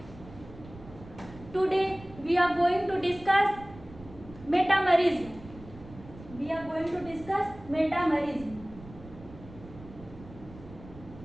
Today we are going to discuss metamerism. We are going to discuss metamerism.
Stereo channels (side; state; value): right; noise; rumble, 18 dB below the sound